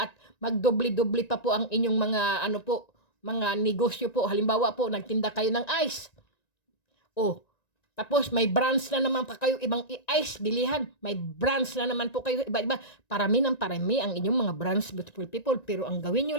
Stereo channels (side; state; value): right; late; 1.9 ms